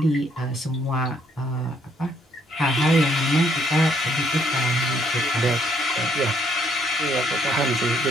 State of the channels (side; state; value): both; normal; correlation 0.69